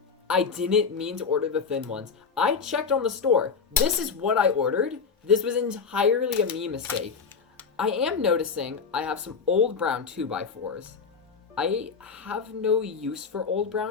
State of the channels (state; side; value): quieter; right; 5.5 dB